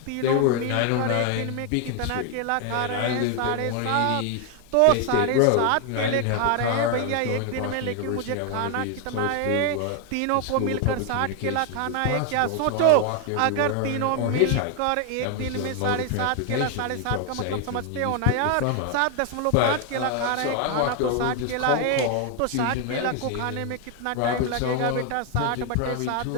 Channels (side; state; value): both; different; correlation 0.01